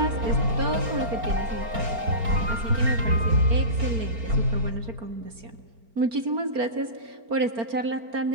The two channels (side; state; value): left; late; 4.4 ms